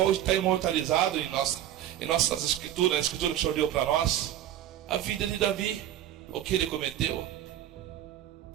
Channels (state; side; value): quieter; left; 12.0 dB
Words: está imortalizado em nossas escrituras, na escritura que o Senhor deu para nós. A vida de Davi, o que ele cometeu.